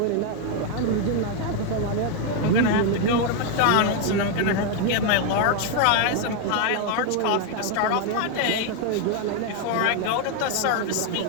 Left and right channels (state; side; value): different; both; correlation 0.01